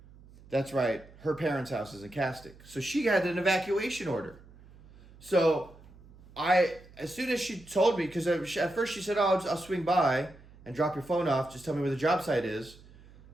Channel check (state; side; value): noise; right; hum, 23 dB below the sound